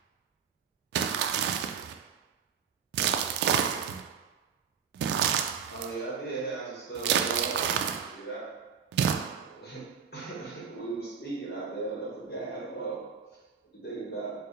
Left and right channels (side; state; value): left; quieter; 7.0 dB